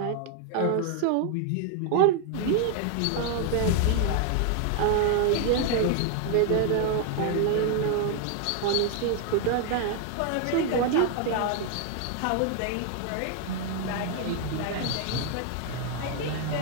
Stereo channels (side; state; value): both; different; correlation 0.00